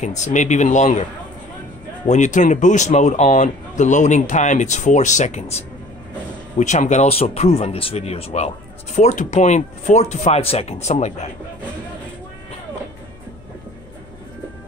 maybe even longer. When you turn the boost mode on, the loading time it's 4 seconds, which I'm gonna also prove on this video as well. 4 to 5 seconds, something like that.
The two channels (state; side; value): noise; left; hum, 25 dB below the sound